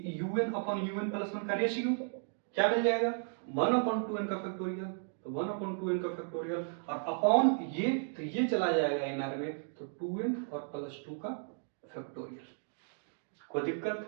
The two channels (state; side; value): silent; left; digital silence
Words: un अपॉन un प्लस 1 का रेशियो क्या मिल जाएगा, 1/2n का फैक्टोरियल, तो 1/2n का फैक्टोरियल और अपॉन ये, तो ये चला जाएगा इनर में, तो 2n और प्लस 2 का फैक्टोरियल। कोई